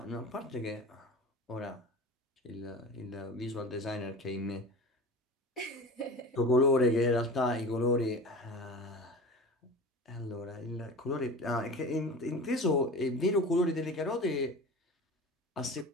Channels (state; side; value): normal; both; correlation 0.35